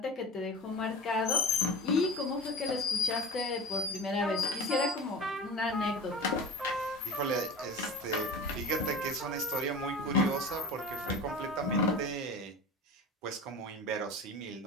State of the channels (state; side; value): normal; both; correlation 0.34